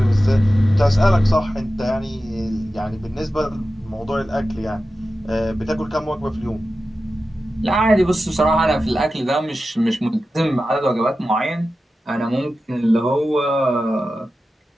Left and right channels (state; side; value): normal; both; correlation 0.93